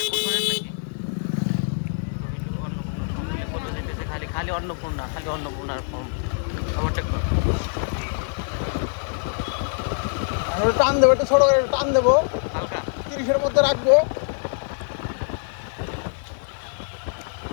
কুটুরের নাকি খালি খালি অন্নপূর্ণা, খালি অন্নপূর্ণার ফর্ম ওভারটেক কর। টান দেবো, একটু ছোট করে টান দেবো, হালকা 30-এর মধ্যে রাখবো।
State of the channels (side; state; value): right; silent; digital silence